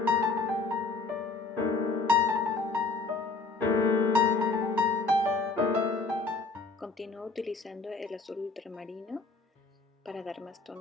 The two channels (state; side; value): quieter; right; 3.9 dB